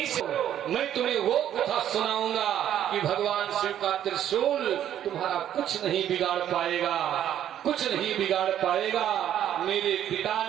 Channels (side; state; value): left; quieter; 10.8 dB